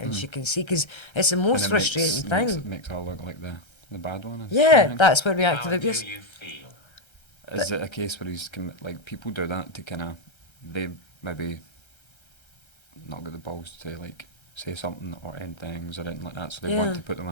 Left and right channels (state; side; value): late; right; 1.3 ms